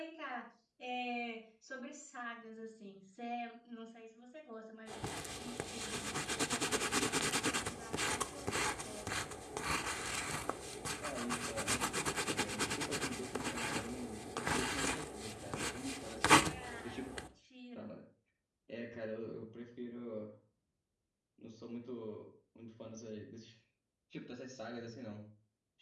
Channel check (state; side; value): identical; both; correlation 1.00